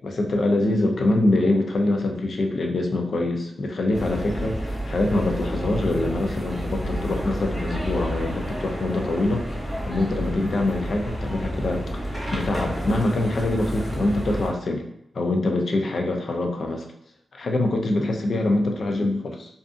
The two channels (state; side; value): normal; both; correlation 0.89